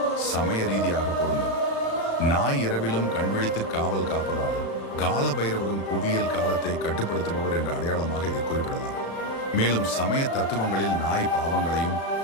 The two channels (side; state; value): right; late; 36 ms